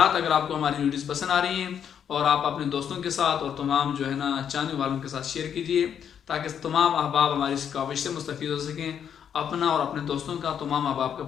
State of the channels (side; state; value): right; quieter; 8.4 dB